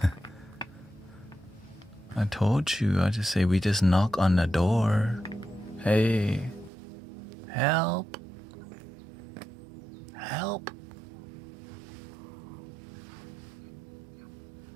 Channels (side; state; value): left; drops out; at 6.7 s